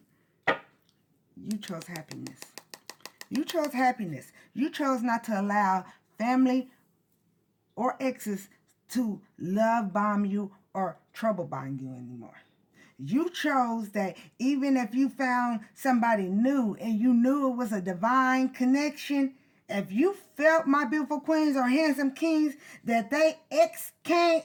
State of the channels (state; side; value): identical; both; correlation 1.00